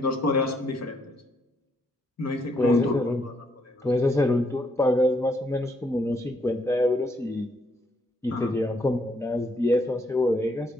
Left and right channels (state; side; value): normal; both; correlation 0.73